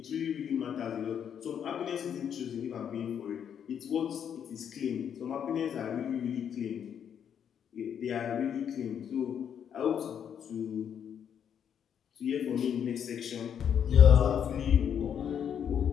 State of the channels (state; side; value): quieter; right; 8.4 dB